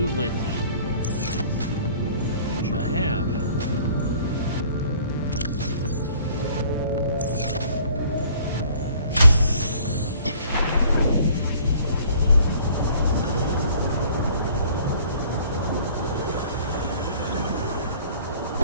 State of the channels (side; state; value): both; inverted; correlation -0.54